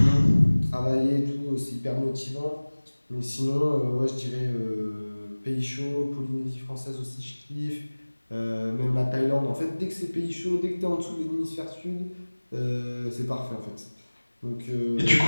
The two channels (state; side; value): inverted; both; correlation -1.00